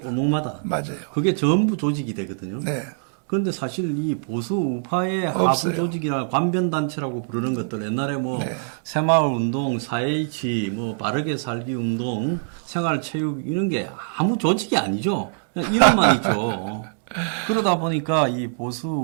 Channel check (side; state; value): left; silent; digital silence